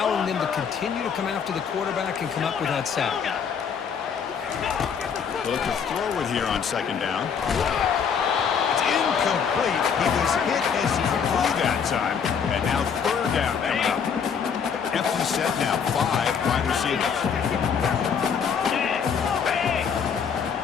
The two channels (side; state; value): right; quieter; 6.9 dB